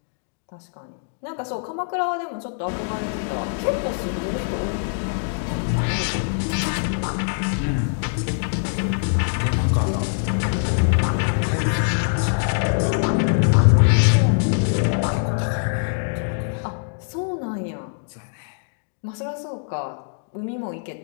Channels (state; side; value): silent; right; digital silence